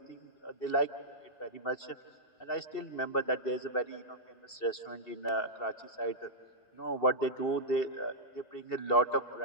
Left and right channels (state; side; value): late; right; 2.7 ms